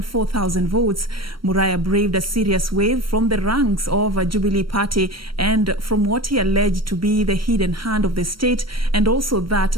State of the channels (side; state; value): left; late; 0.74 ms